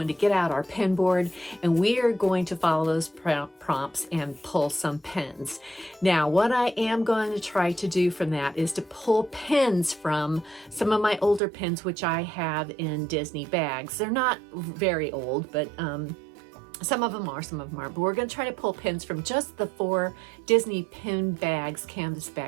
to get out our pin board, and we are going to follow those prompts and pull some pins. Now, what I am going to try to do from that is to pull pins from some of my older pins, which I have in Disney bags. They're not very old, but some of them are, but we're going to try to pull pins from just the 4 Disney pin bags, canvas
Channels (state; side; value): drops out; left; at 11.4 s